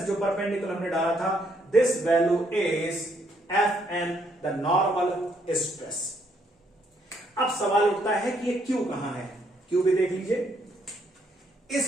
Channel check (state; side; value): normal; both; correlation 0.71